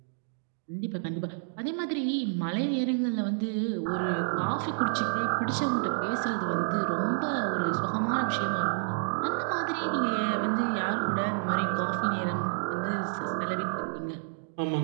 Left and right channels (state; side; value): silent; left; digital silence